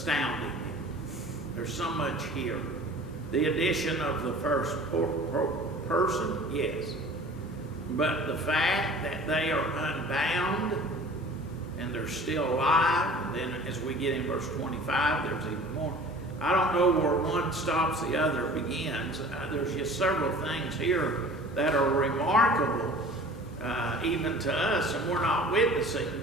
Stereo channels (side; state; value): both; normal; correlation 0.44